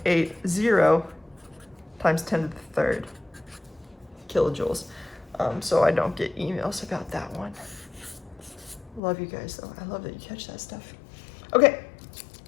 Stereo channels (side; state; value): right; drops out; at 9.0 s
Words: times 10 to the 3rd kilojoules. So I don't get emails about that one. Love you guys though. I love that you catch that stuff. Okay,